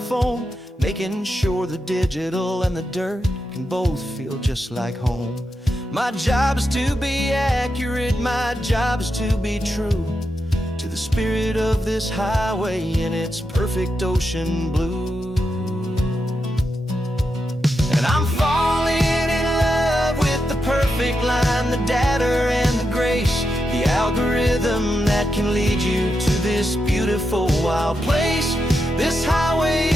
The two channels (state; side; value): normal; both; correlation 0.86